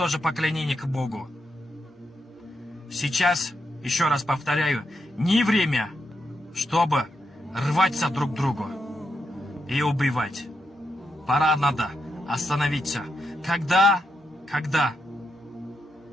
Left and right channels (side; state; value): both; normal; correlation 0.83